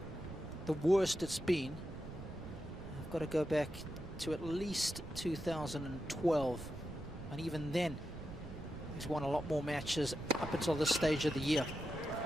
the worst it's been. I've got to go back to at least 2012, and even then he's won a lot more matches up until this stage of the year.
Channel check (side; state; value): right; noise; rumble, 12 dB below the sound